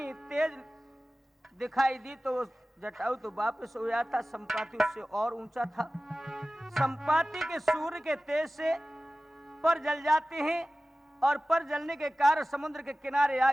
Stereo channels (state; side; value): normal; both; correlation 0.97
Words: तेज दिखाई दी तो वो जटायु तो वापस हो गया था। संपाति उससे और ऊंचा था। संपाति के सूर्य के तेज से पर जल जाते हैं और पर जलने के कारण समुद्र के किनारे आ